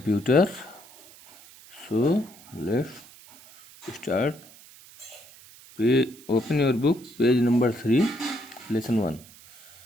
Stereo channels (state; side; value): noise; right; hiss, 22 dB below the sound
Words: So let's start. Open your book, page number 3, lesson 1.